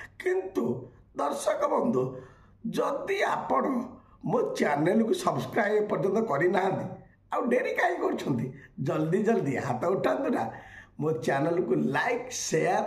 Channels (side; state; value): both; identical; correlation 1.00